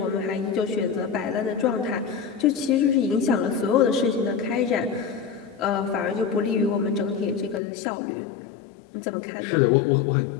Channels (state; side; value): drops out; right; at 7.6 s